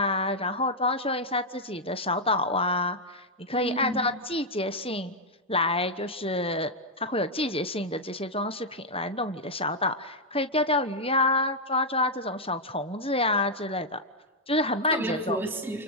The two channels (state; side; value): normal; both; correlation -0.03